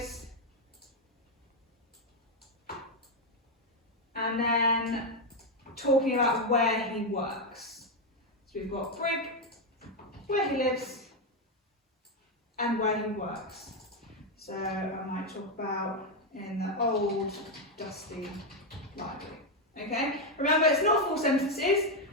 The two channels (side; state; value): both; normal; correlation 0.05